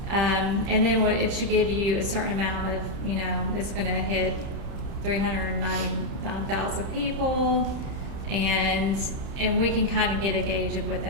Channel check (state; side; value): late; left; 30 ms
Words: and then it should give you a certain amount of, it's going to hit 399,000 people, and we can kind of get a gauge of what